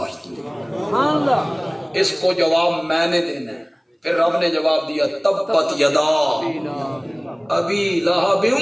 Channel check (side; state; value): both; identical; correlation 1.00